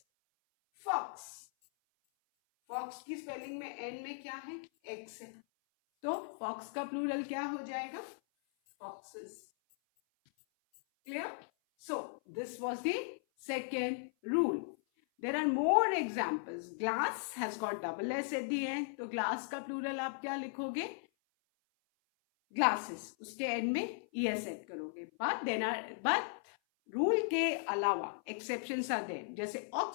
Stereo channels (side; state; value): right; silent; 53 dB below the other